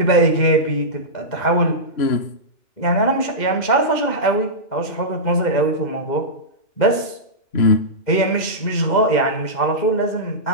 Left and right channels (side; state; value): right; late; 2.1 ms